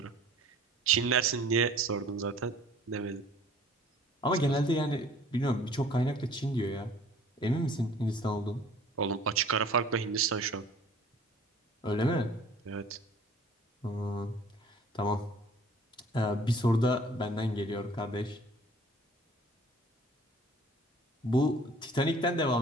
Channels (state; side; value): normal; both; correlation 0.51